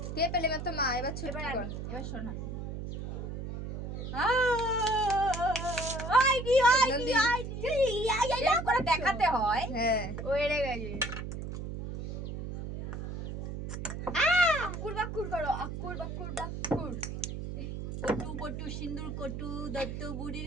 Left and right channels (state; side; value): noise; right; hum, 6 dB below the sound